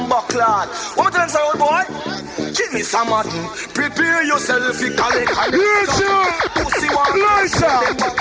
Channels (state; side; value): identical; both; correlation 1.00